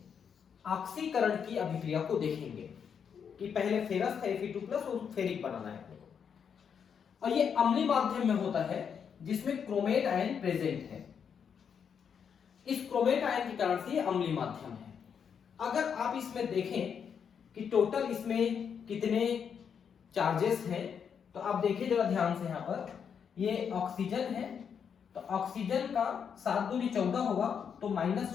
ऑक्सीकरण की अभिक्रिया को देखेंगे कि पहले फेरस का Fe2+ और फेरिक बनाना है। और ये अम्लीय माध्यम में होता है जिसमें क्रोमेट आयन प्रेजेंट है। इस क्रोमेट आयन के कारण से ये अम्लीय माध्यम है। अगर आप इसमें देखें कि टोटल इसमें कितने चार्जेस हैं, तो आप देखिए जरा ध्यान से, यहां पर ये ऑक्सीजन है, तो ऑक्सीजन का 7 दूनी 14 होगा, तो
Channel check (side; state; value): right; quieter; 7.2 dB